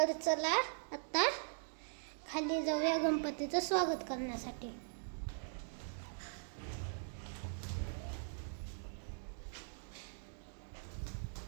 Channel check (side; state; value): left; silent; digital silence